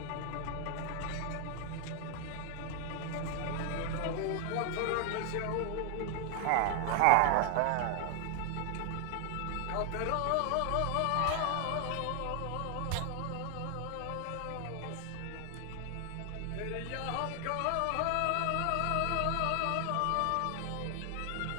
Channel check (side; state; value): both; different; correlation 0.00